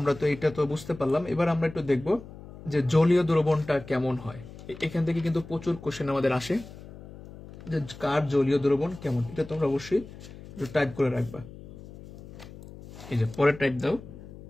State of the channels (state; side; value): noise; left; hum, 16 dB below the sound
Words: তো এটা তো বুঝতে পারলাম, এবার আমরা একটু দেখব যে জলীয় দ্রবণটা কেমন হয়। এখান থেকে কিন্তু প্রচুর কোশ্চেন আমাদের আসে যে কার জলীয় দ্রবণ কেমন, এটা তোমরা অবশ্যই একটু টাইপ করে রাখবা। এই যে পরে টাইপ দাও,